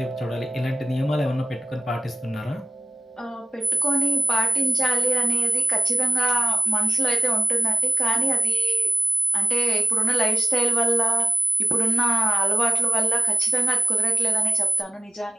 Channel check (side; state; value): both; normal; correlation 0.95